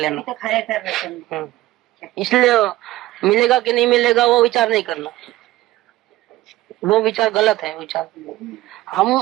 इसलिए मिलेगा कि नहीं मिलेगा वो विचार नहीं करना, वो विचार गलत है विचार। हम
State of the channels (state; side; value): quieter; left; 17.0 dB